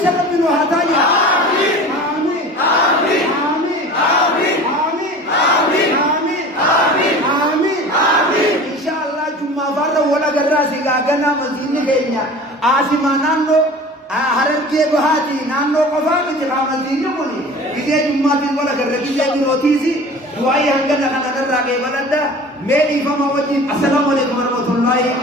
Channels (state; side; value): normal; both; correlation 0.40